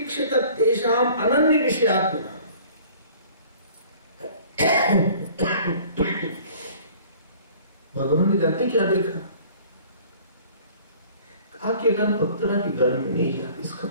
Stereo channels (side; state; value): both; inverted; correlation -0.51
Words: तेषाम अनन्य विषयात्मना। भगवान ने जानते क्या देखा? कहा कि अगर अप्सरा के घर में नहीं जाते, इसका